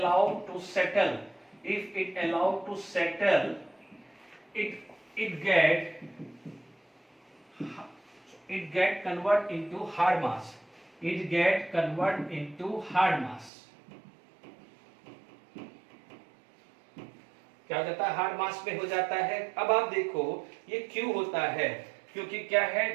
to settle, if it allow to settle, it get convert into hard mass, it get convert into hard mass, क्या हो जाता है, हार्ड मास में हो जाता है। अब आप देखो ये क्यों होता है, क्योंकि क्या है,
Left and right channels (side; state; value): left; drops out; at 13.5 s